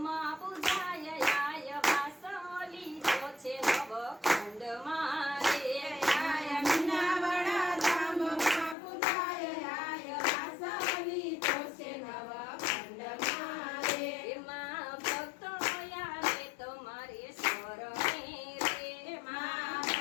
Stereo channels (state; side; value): drops out; right; at 8.8 s